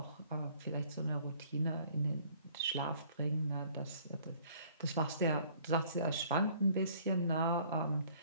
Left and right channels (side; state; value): both; inverted; correlation -0.57